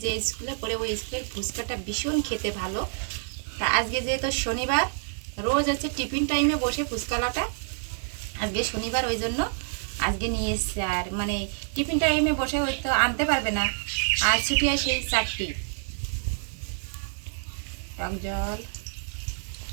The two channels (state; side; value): silent; left; 60 dB below the other